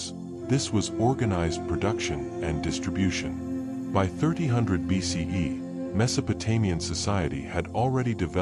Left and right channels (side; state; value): both; identical; correlation 1.00